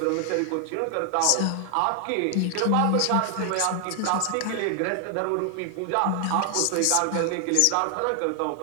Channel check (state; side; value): different; both; correlation 0.00